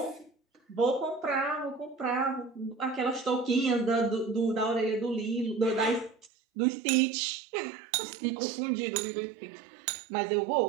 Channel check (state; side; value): drops out; left; at 6.3 s